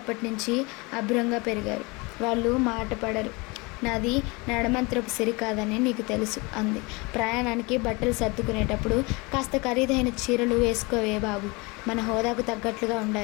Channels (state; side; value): quieter; right; 26.6 dB